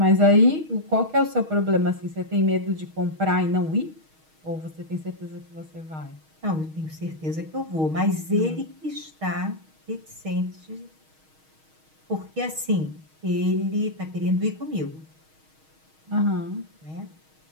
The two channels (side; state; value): left; late; 6.4 ms